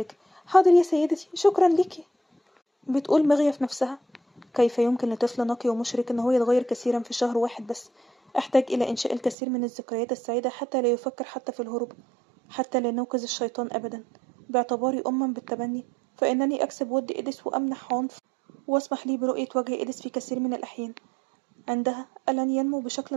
حاضر يا سيدتي، شكرا ليكي. بتقول مغية في نفسها: كيف يمكن لطفل نقي ومشرك إن هو يتغير كثيرا في شهر واحد بس؟ أحتاج إلى إنشاء الكثير من الذكريات السعيدة حتى لا يفكر حتى في الهروب، حتى لا نوقظ الشيطان أبدا. باعتباري أما بالتبني فإنني أكسب ود إيديس وأمنح عنف، واسمح لي برؤية وجه إيديس في كثير من الأحيان. عندها ألن ينمو بشكل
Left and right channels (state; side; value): drops out; left; at 9.3 s